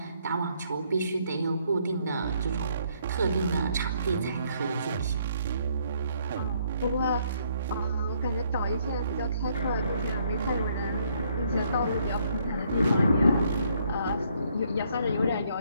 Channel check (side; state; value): both; inverted; correlation -0.69